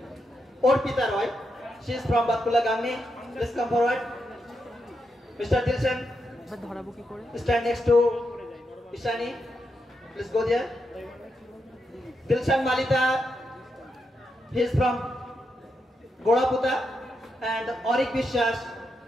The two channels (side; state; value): both; normal; correlation 0.84